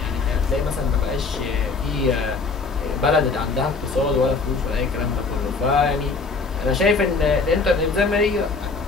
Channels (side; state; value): right; quieter; 4.2 dB